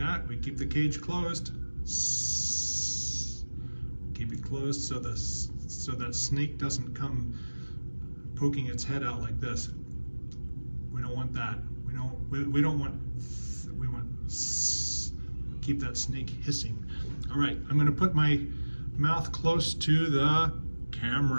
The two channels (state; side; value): inverted; both; correlation -1.00